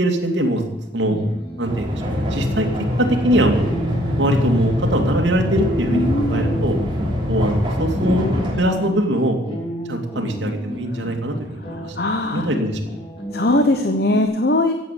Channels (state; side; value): normal; both; correlation 0.58